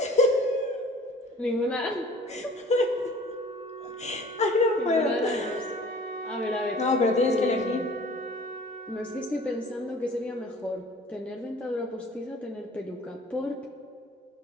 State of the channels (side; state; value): both; normal; correlation 0.48